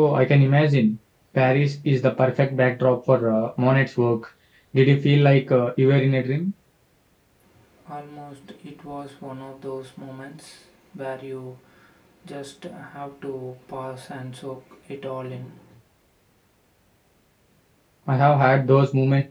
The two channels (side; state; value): both; identical; correlation 1.00